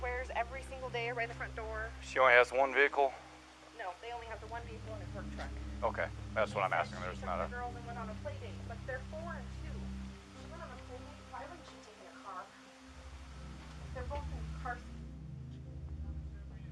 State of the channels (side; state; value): both; identical; correlation 1.00